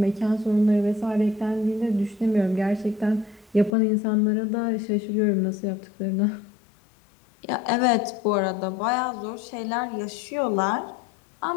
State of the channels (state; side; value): drops out; right; at 3.8 s